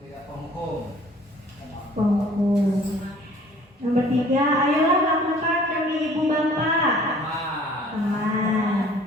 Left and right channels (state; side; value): normal; both; correlation 0.53